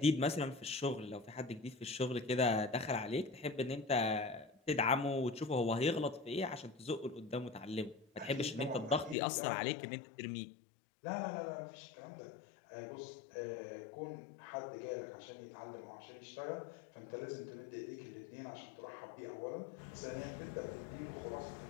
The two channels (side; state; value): right; drops out; at 9.2 s